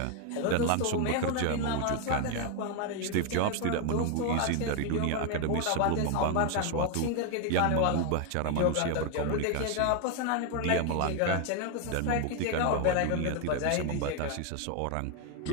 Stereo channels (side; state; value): both; different; correlation 0.01